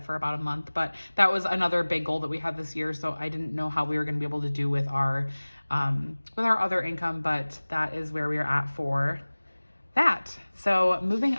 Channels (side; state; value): both; inverted; correlation -1.00